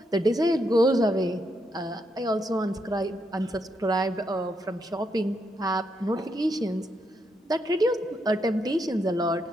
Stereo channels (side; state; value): both; normal; correlation 0.79